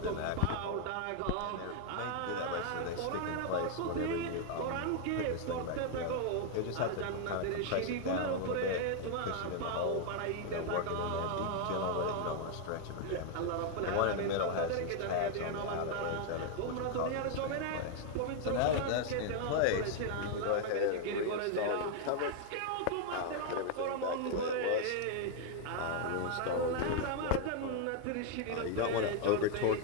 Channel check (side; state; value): both; different; correlation 0.00